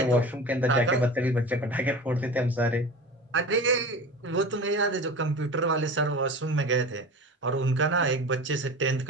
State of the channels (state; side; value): normal; both; correlation 0.33